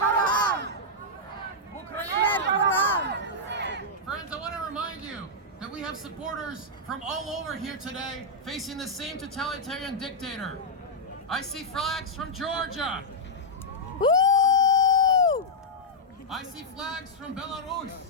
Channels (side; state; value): both; normal; correlation -0.07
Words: Смерть ворогам! Friends, I want to remind you that we have supporters from all over here today facing the same totalitarian dictator. I see flags from Georgia. Woo! I see flags from Belarus.